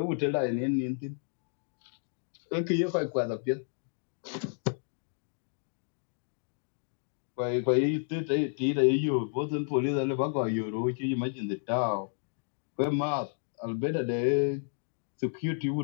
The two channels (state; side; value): silent; right; digital silence